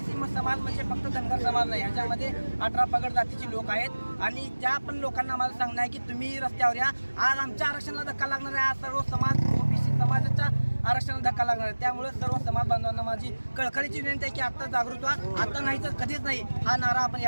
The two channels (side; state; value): both; inverted; correlation -1.00